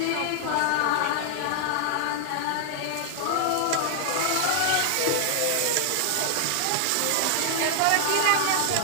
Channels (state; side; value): different; both; correlation 0.00